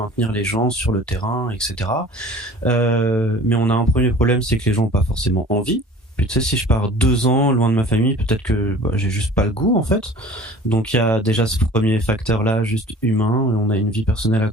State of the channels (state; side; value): normal; both; correlation 0.45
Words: les gens sur le terrain, etc. Mais on a un premier problème, c'est que les gens n'ont pas forcément envie. Puis tu sais, si je pars 2 ans loin de ma famille, peut-être que j'ai juste pas le goût en fait. Donc il y a déjà ce premier facteur-là, juste humain. On a une vie personnelle à